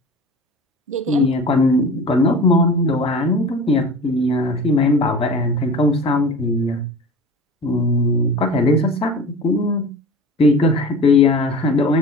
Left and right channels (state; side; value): normal; both; correlation 0.37